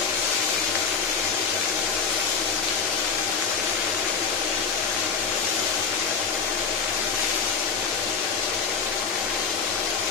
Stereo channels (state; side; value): quieter; right; 5.7 dB